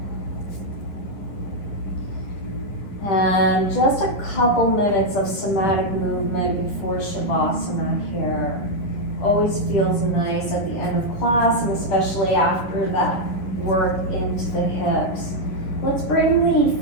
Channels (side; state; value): right; late; 10 ms